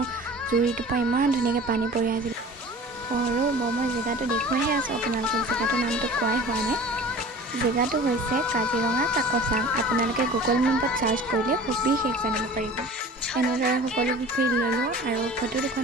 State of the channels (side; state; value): both; normal; correlation 0.41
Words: জুৰিটোৰ পৰা ইমান ধুনীয়াকৈ পানী পৰি আছিল। মই জেগাটো দেখুৱাইহে আছোঁ আপোনালোকক, জেগাটোৰ নামটো কোৱাই হোৱা নাই। জেগাটো হৈছে কাজিৰঙা কাকচাং। আপোনালোকে গুগল মেপত চাৰ্চ কৰিলে সবিশেষ জানিব পাৰিব। এনেদৰে সকলোবোৰ ফিল ল'লোঁ আৰু ফটো